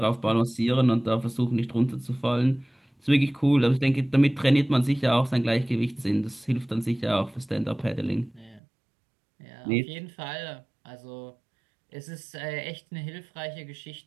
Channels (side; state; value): left; drops out; at 8.6 s